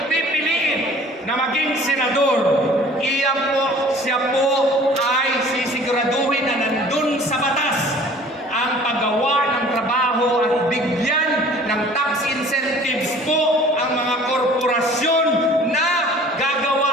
pipiliin na maging senador, siya po ay sisiguraduhin na nandun sa batas ang paggawa ng trabaho at bigyan ng tax incentives po ang mga korporasyon na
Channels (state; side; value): normal; both; correlation 0.49